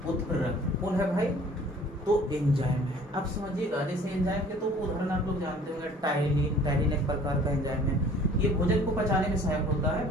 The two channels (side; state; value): both; normal; correlation 0.52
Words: उत्प्रेरक कौन है भाई, तो एंजाइम है। अब समझिएगा, जैसे एंजाइम के तो उदाहरण आप लोग जानते होंगे, टाइलिन। टाइलिन एक प्रकार का एंजाइम है, ये भोजन को पचाने में सहायक होता है,